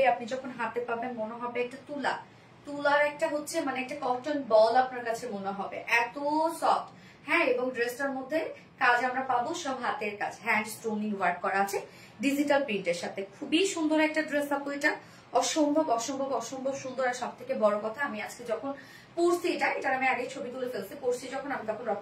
আপনি যখন হাতে পাবেন মনে হবে একটা তুলার একটা হচ্ছে মানে একটা কটন বল আপনার কাছে মনে হবে, এত সফট। হ্যাঁ, এবং ড্রেসটার মধ্যে কাজ আমরা পাবো সব হাতের কাজ, হ্যান্ড স্টোনিং ওয়ার্ক করা আছে ডিজিটাল প্রিন্টের সাথে। খুবই সুন্দর একটা ড্রেস আপু এটা, অসম্ভব অসম্ভব অসম্ভব সুন্দর। আর সব থেকে বড় কথা, আমি আজকে যখন পরছি এটার আমি আগে ছবি তুলে ফেলছি, পরছি যখন আমি তখন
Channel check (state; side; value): identical; both; correlation 1.00